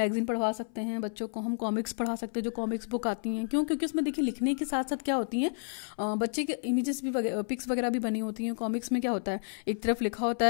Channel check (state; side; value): silent; right; 57 dB below the other